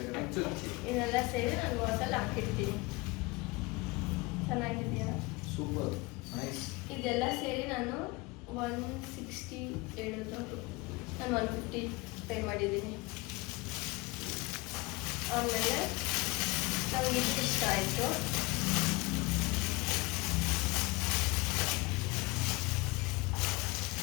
ಚುಚ್ಚಿ ಇದೆಲ್ಲ ಸೇರಿ ನಾನು ವಾಸಲ್ಲಿ ಹಾಕಿರ್ತೀನಿ. ಚೆನ್ನಾಗಿದೆಯಾ? Super nice. ಇದೆಲ್ಲ ಸೇರಿ ನಾನು 160 ಹೇಳಿದ್ರು, ನಾನು 150 ಪೇ ಮಾಡಿದ್ದೀನಿ. ಆಮೇಲೆ ನನಗೆ ಇದು ಇಷ್ಟ ಆಯಿತು.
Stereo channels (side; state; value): right; quieter; 24.0 dB